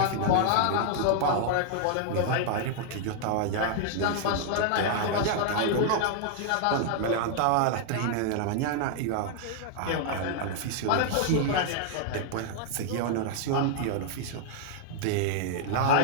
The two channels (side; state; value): both; different; correlation -0.01